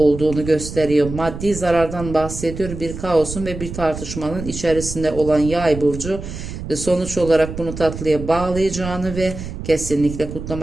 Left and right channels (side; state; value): right; noise; rumble, 9 dB below the sound